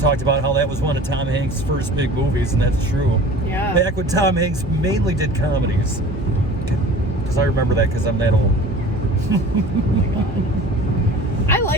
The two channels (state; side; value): normal; both; correlation 0.42